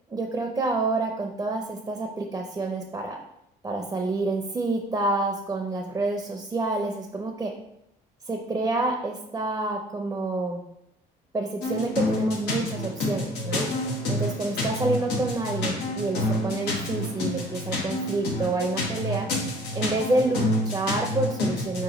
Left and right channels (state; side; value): normal; both; correlation 0.53